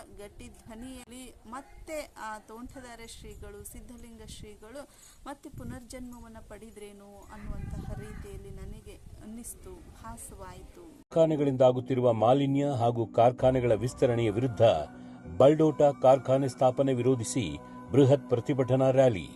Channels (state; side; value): identical; both; correlation 1.00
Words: ಗಟ್ಟಿ ಧ್ವನಿಯಲ್ಲಿ ಮತ್ತೆ ಆ ತೋಂಟದಾರ್ಯ ಶ್ರೀಗಳು ಸಿದ್ಧಲಿಂಗ ಶ್ರೀಗಳು ಮತ್ತೆ ಪುನರ್ಜನ್ಮವನ್ನು ಪಡೆದ್ರೇನು ಅನ್ನುವಂತಹ ರೀತಿಯಲ್ಲಿ ನನಗೆ ಅನ್ನಿಸ್ತು, ಭಾಸವಾಯಿತು. ಕಾರ್ಖಾನೆಗಳಿಂದ ಆಗುತ್ತಿರುವ ಮಾಲಿನ್ಯ ಹಾಗೂ ಕಾರ್ಖಾನೆಗಳ ವಿಸ್ತರಣೆಯ ವಿರುದ್ಧ ಬಲ್ಡೋಟ ಕಾರ್ಖಾನೆ ಸ್ಥಾಪನೆ ವಿರೋಧಿಸಿ ಬೃಹತ್ ಪ್ರತಿಭಟನಾ ರ್ಯಾಲಿ.